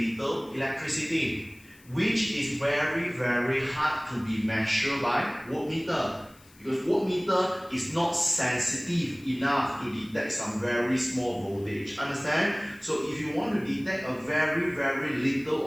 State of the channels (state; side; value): noise; left; hiss, 26 dB below the sound